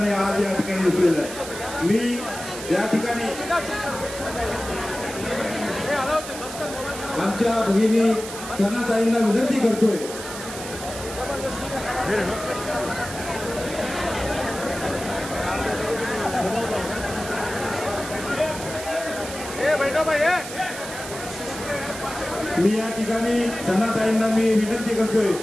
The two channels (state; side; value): noise; right; hiss, 10 dB below the sound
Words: आज या ठिकाणी दिसलेलं आहे. मी या ठिकाणी आमच्या भगिनी सनाताईंना विनंती करतोय मी या ठिकाणी सनाताईंना मी विनंती करतोय